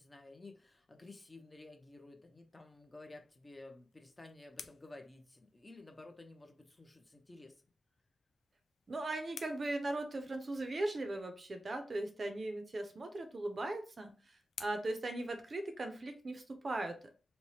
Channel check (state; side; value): normal; both; correlation 0.93